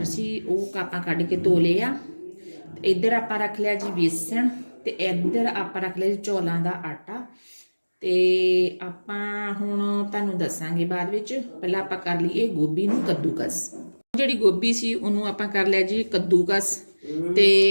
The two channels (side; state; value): both; inverted; correlation -1.00